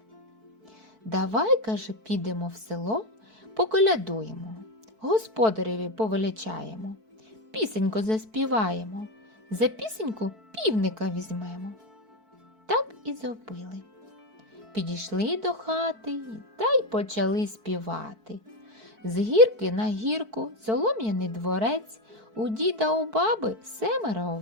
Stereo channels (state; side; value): late; left; 4.6 ms